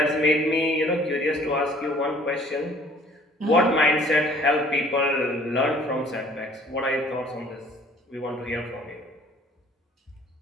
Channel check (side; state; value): both; normal; correlation 0.55